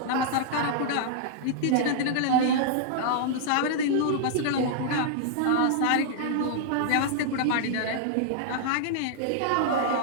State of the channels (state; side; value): different; both; correlation -0.01